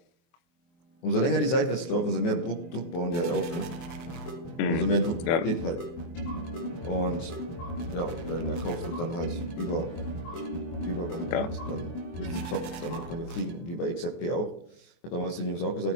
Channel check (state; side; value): late; right; 23 ms